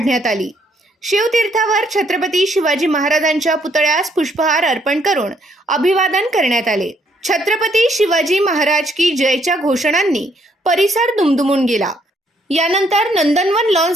आली। शिवतीर्थावर छत्रपती शिवाजी महाराजांच्या पुतळ्यास पुष्पहार अर्पण करून अभिवादन करण्यात आले। छत्रपती शिवाजी महाराज की जयच्या घोषणांनी परिसर दुमदुमून गेला। यानंतर नंदनवन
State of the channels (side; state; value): both; normal; correlation 0.69